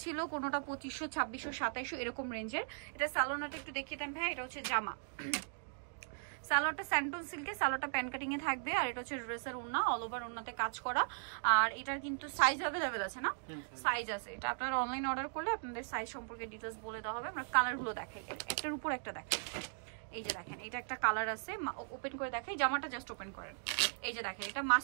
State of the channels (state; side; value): silent; left; digital silence